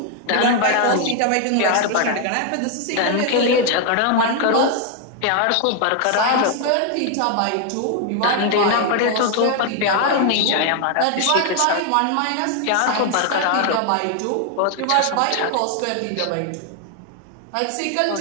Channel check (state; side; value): different; both; correlation 0.00